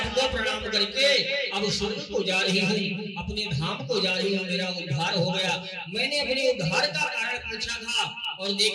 प्रणाम करके अब स्वर्ग को जा रही हूँ, अपने धाम को जा रही हूँ, मेरा उद्धार हो गया। मैंने अपने उद्धार का कारण पूछा था, और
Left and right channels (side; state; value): both; identical; correlation 1.00